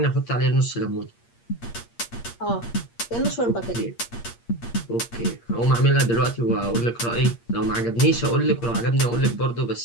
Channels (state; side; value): late; right; 8.6 ms